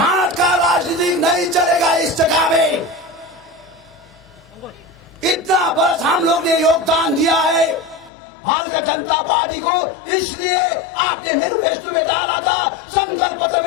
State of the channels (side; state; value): right; drops out; at 8.1 s